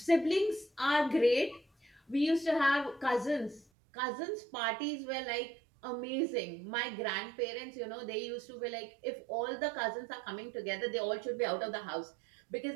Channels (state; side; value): drops out; left; at 3.7 s